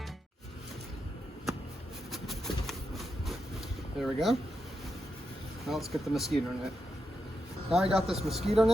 There we go. Now let's get the mosquito net. Now I got this mosquito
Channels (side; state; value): both; normal; correlation 0.85